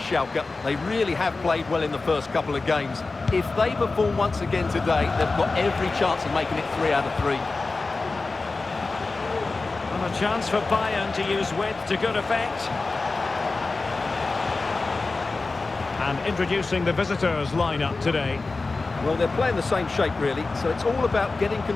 They really have played well in the first couple of games. If they perform once again today, they've got every chance of making it 3 out of 3. And a chance for Bayern to use width to good effect. And introducing the visitors lineup today. Well, they're playing the same shape, really, so it's all about getting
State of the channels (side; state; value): right; quieter; 3.7 dB